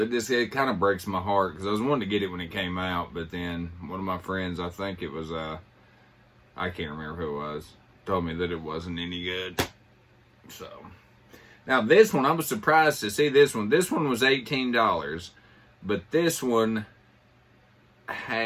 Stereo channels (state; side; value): identical; both; correlation 1.00